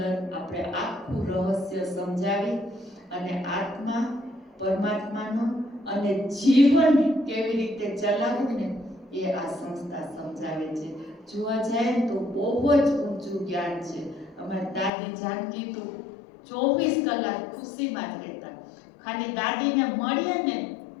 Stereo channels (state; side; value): drops out; right; at 14.9 s